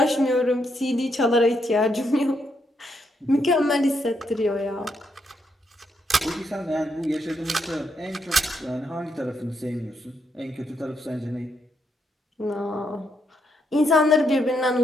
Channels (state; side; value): normal; both; correlation 0.78